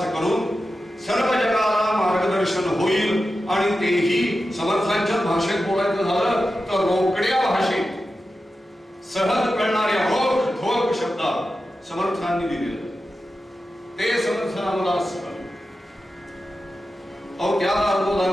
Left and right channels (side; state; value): both; normal; correlation 0.92